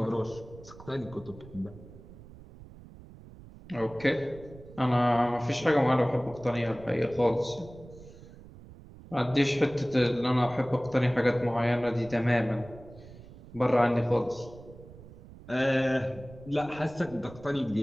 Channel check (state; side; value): noise; right; rumble, 18 dB below the sound